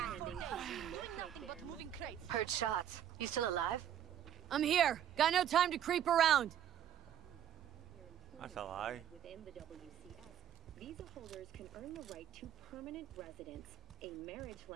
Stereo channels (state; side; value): quieter; left; 10.1 dB